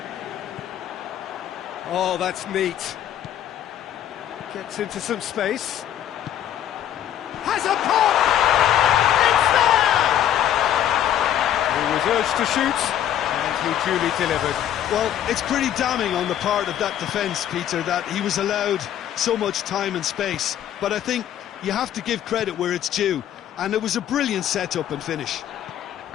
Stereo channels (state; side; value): quieter; right; 10.9 dB